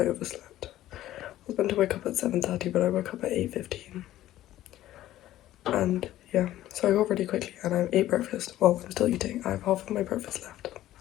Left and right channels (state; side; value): quieter; right; 14.1 dB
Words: overslept. I was meant to wake up at 7:30, but I woke up at 8:15. And yeah, so I got ready quickly and I ate breakfast. Well, I'm still eating. I have half of my breakfast left.